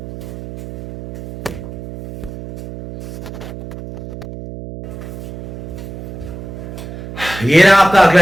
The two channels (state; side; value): noise; right; hum, 11 dB below the sound